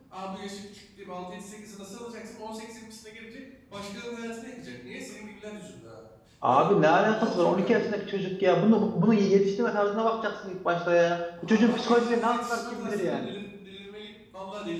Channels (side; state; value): both; identical; correlation 1.00